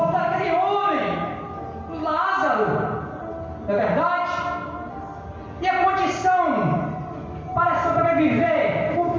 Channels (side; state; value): both; identical; correlation 1.00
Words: daquele homem, Lázaro. Não é verdade? E a condição para sobreviver, o